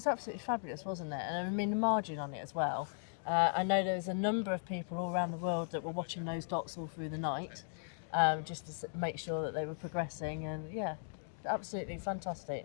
absolutely fabulous, wasn't it? And I mean the margin on it as well. I know there was a number of people all around the world that were watching those dots all through the night, just to make sure that they were progressing, and absolutely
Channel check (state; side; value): silent; right; digital silence